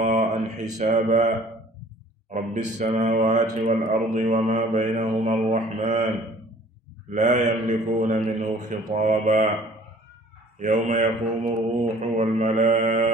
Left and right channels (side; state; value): both; normal; correlation 0.52